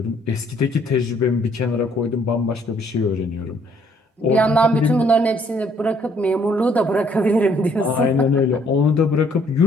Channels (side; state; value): both; normal; correlation 0.65